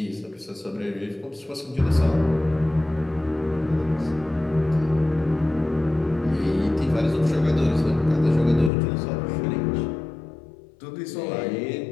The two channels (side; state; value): right; drops out; at 8.7 s